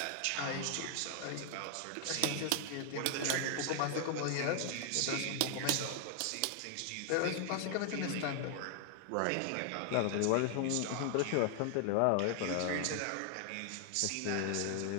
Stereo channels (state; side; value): different; both; correlation 0.00